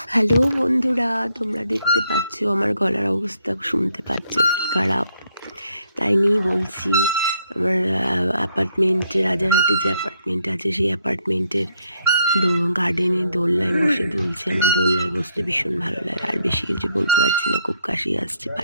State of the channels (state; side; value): inverted; both; correlation -0.72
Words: হ্যালো বন্ধুরা, তোমরা দেখতে পাচ্ছ আমার গলার অবস্থা, শুনতে পাচ্ছ কি খারাপ। তাই নিয়েই বলছি, আমার অ্যাপার্টমেন্টে, রাজারহাটে যে অ্যাপার্টমেন্ট আছে সেই অ্যাপার্টমেন্টের গার্ডেনে দোলনায় বসে দুলছে। আমার দোলনায় বসতে ভীষণ ভালো লাগে। আর বেশি কিছু বলতে পারছি না, খুব কাশি আসছে।